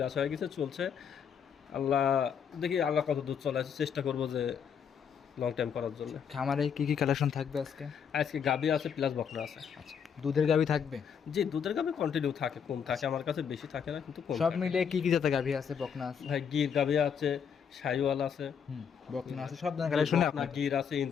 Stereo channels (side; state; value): right; quieter; 7.3 dB